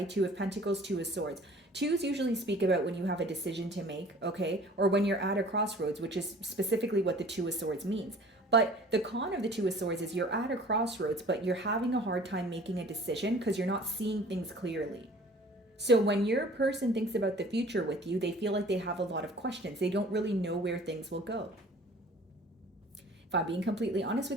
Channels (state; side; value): normal; both; correlation 0.48